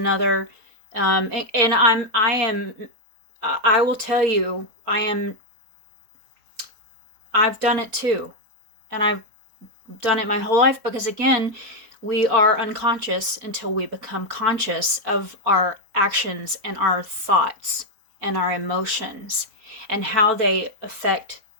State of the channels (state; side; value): late; left; 4.5 ms